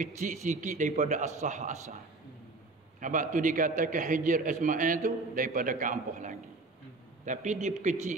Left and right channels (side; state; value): left; quieter; 3.4 dB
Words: sikit daripada asal. Sebab tu dikatakan Hijr Ismail tu daripada Kaabah lagi. Tapi